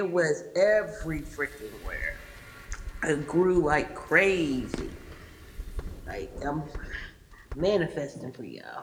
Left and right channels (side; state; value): both; identical; correlation 1.00